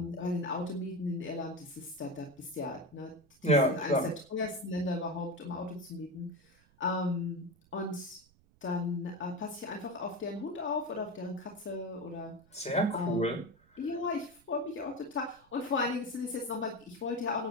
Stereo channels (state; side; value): noise; right; rumble, 30 dB below the sound